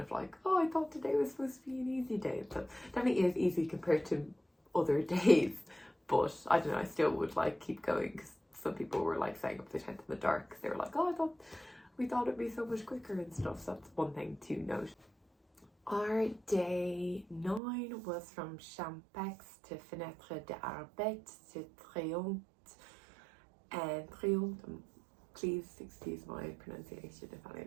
of like, oh, I thought today was supposed to be an easy day. So definitely is easy compared to other days, but I don't know, I still would like keep going, because some people were like staying up to the tent in the dark because they were like, oh, we thought it'd be so much quicker and stuff. So that's one thing to note. Our day 9 was from Champex to Fenêtre d'Arbet to Triomphe, and Triomphe, please excuse my pronunciation if any of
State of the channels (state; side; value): drops out; left; at 17.6 s